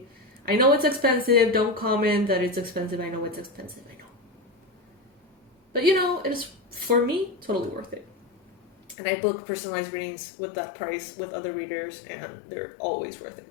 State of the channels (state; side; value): drops out; right; at 9.0 s